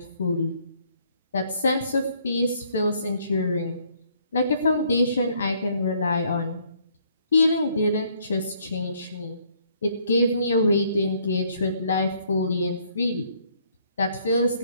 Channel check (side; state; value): both; inverted; correlation -0.65